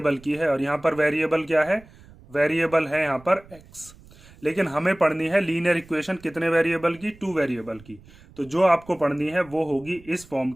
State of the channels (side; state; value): right; noise; rumble, 23 dB below the sound